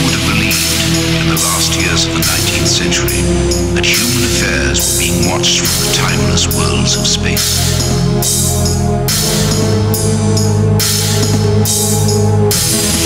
have believed in the last years of the 19th century that human affairs were being watched from the timeless worlds of space.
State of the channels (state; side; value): identical; both; correlation 1.00